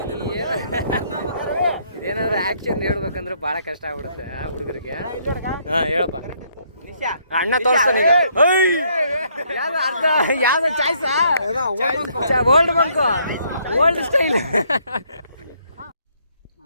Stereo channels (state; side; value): inverted; both; correlation -0.69